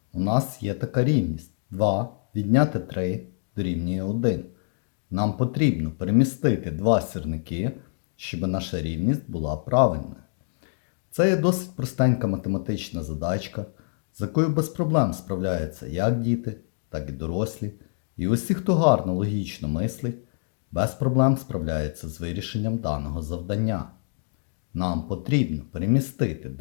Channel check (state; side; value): silent; right; digital silence